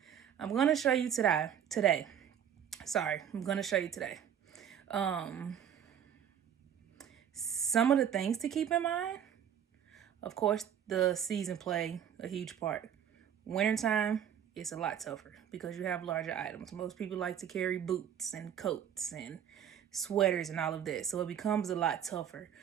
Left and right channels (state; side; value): quieter; left; 9.1 dB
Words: I'm going to show you today. I'm going to show you today. Some of the things to keep in mind. Of course, the season play a huge part. Wintertime, it's a lot tougher because you have larger items. Most people like to carry boots and coats and sweaters and all of that. So it becomes a lot tougher.